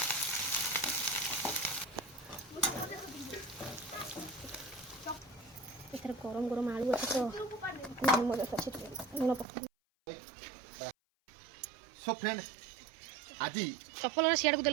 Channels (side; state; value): left; drops out; at 9.5 s